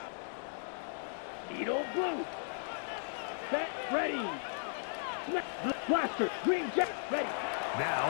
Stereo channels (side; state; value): right; silent; digital silence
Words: Edo blue. Set, ready. Blaster, green jet, ready. Now